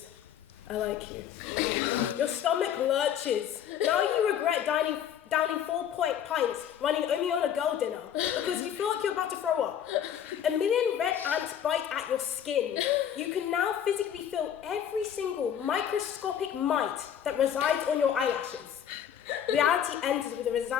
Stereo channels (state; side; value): quieter; right; 9.4 dB